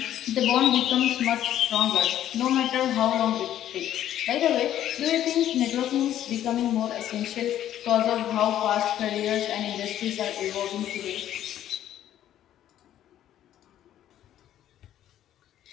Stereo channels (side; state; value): right; quieter; 11.7 dB